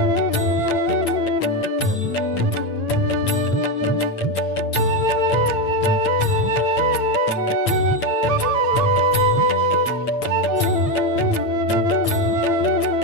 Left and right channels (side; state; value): right; late; 8.7 ms